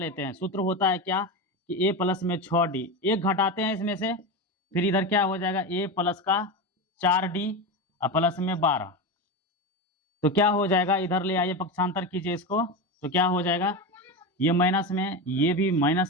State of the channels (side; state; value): both; normal; correlation 0.19